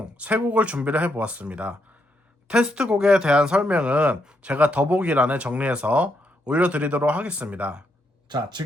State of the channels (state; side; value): normal; both; correlation 0.78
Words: 3곡을 준비를 해보았습니다. 테스트곡에 대한 설명은 제가 더보기란에 정리해서 올려드리도록 하겠습니다. 자,